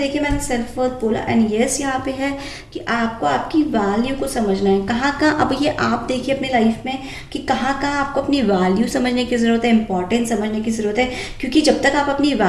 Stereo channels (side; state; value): both; identical; correlation 1.00